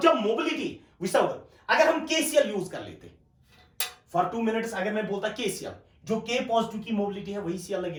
जब mobility विसर्ग, अगर हम KCl यूज कर लेते for 2 minutes, अगर मैं बोलता KCl, जो K पॉजिटिव की मोबिलिटी है वही Cl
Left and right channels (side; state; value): both; identical; correlation 1.00